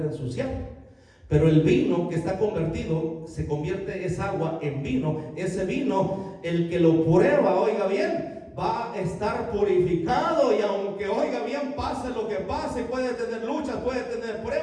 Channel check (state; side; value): identical; both; correlation 1.00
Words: a ensuciar. Pero el vino que está convertido, se convierte esa agua en vino. Ese vino, el que lo prueba, oiga bien, va a estar purificado. Y aunque, oiga bien, pase lo que pase, puede tener luchas, puede tener